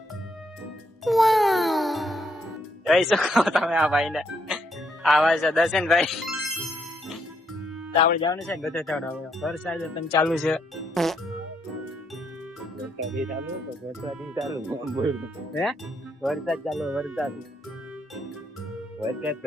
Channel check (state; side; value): normal; both; correlation 0.74